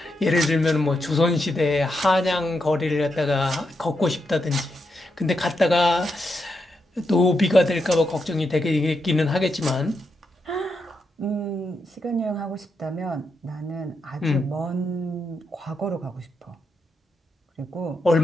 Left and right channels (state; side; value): normal; both; correlation 0.83